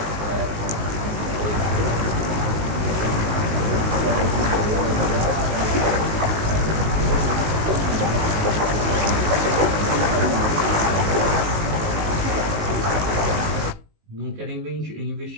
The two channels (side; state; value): left; late; 19 ms